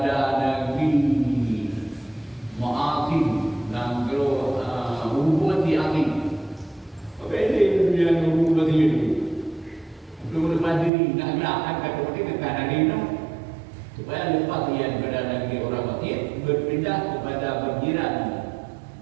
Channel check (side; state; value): left; drops out; at 10.9 s